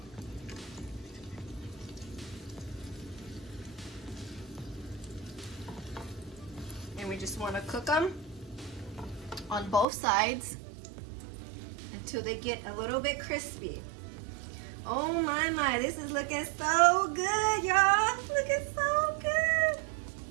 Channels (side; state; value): left; drops out; at 9.9 s